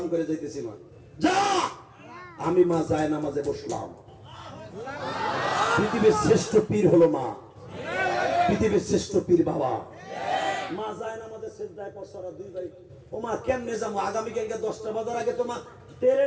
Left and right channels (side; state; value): both; identical; correlation 1.00